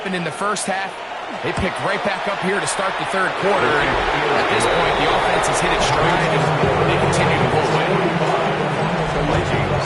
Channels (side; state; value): both; identical; correlation 1.00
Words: in the first half, they picked right back up here to start the third quarter. And at this point, the offense has hit its stride, and they continue to pull away.